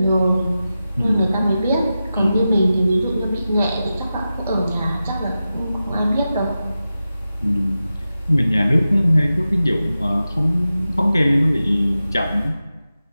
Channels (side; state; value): both; inverted; correlation -0.93